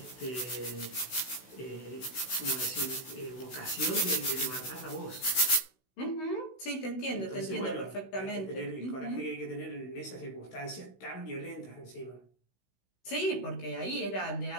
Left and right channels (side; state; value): right; late; 16 ms